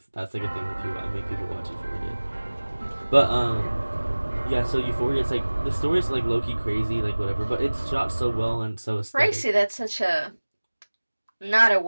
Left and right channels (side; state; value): both; inverted; correlation -1.00